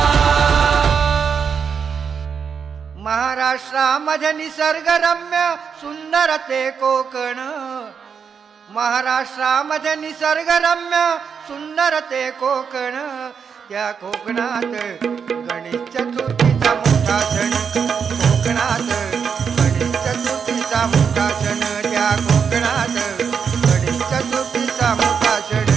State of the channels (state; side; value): quieter; left; 6.6 dB